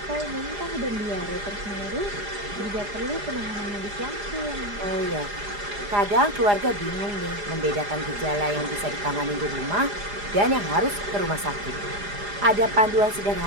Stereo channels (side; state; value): left; late; 4.9 ms